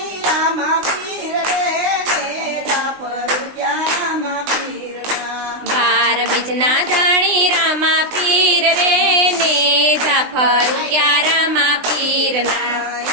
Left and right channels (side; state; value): left; late; 20 ms